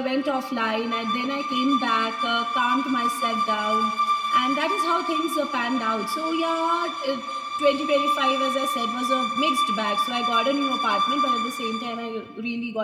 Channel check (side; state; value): both; identical; correlation 1.00